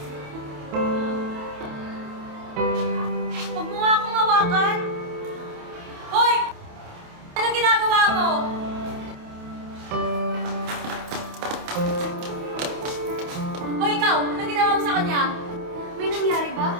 mo nga akong hawakan! Hoy! Anong ginagawa mo? Hoy, ikaw! Anong ginawa mo sa kanya? May nangyari ba?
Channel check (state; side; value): late; left; 28 ms